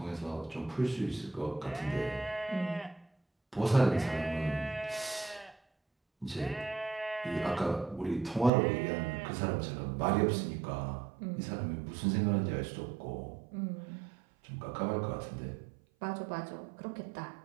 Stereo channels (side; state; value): left; drops out; at 8.5 s